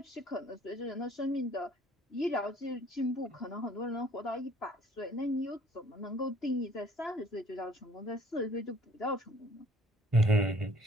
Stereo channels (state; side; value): normal; both; correlation 0.56